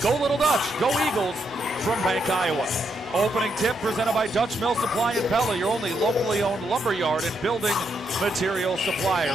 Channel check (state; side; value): normal; both; correlation 0.79